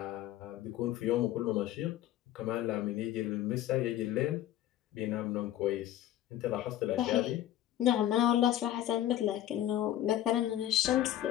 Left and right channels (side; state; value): right; quieter; 12.6 dB